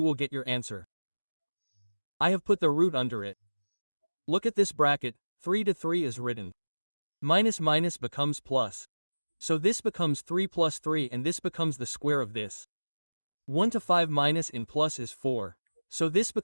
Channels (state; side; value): inverted; both; correlation -1.00